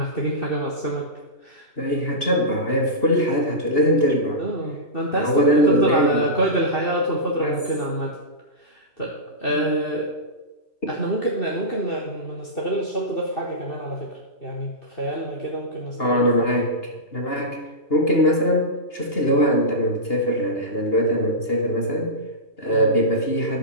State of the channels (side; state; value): right; late; 2.8 ms